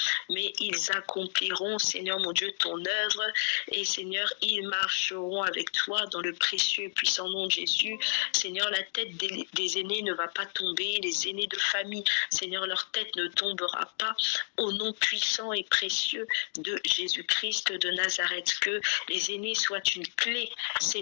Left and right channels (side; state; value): right; silent; digital silence